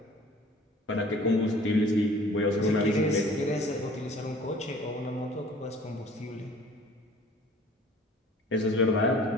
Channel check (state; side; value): normal; both; correlation 0.50